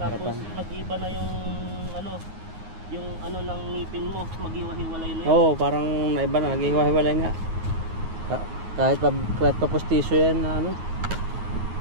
harapan. Tapos mag-iba na yung ng ngipin mo, maghiwa-hiwalay na yun. Oo, parang naiba na, naghiwa-hiwalay nga. Kahit pa postisyo yan na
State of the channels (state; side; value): late; left; 9.6 ms